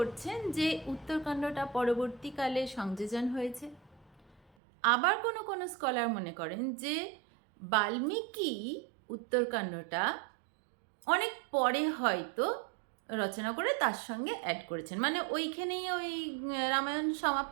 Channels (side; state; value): left; drops out; at 4.4 s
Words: যে উত্তরকাণ্ডটা পরবর্তীকালে সংযোজন হয়েছে। আবার কোনো স্কলার মনে করেন যে বাল্মীকি উত্তরকাণ্ডটা অনেক পরে হয়তো রচনা করে তার সঙ্গে অ্যাড করেছেন, মানে ওইখানেই ওই রামায়ণ